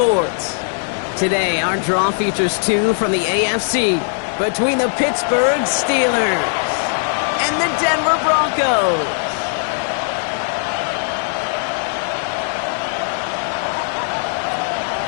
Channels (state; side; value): silent; right; digital silence